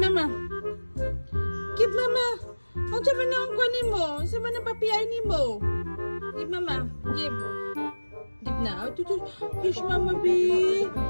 mama. Give mama. Ang sabi na ang kuha ni mo. Ang sabi na papiyay ni mo. Give mama. Give. Give na. Oh, tutu. Kiss mama B.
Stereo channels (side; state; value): both; inverted; correlation -1.00